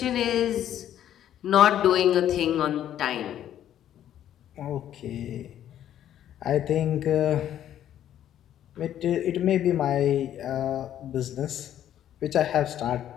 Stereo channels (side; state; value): right; quieter; 11.1 dB